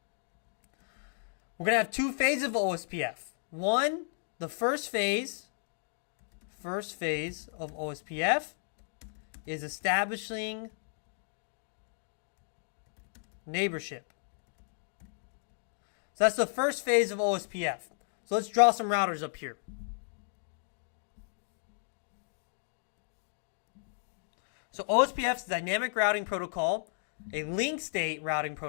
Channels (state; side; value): silent; right; digital silence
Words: We're going to have 2 phases of OSPF. One, the first phase of OSPF is establishing neighborship. So that's the first phase of OSPF. So let's draw some routers up here. So OSPF is a dynamic routing protocol, a link state routing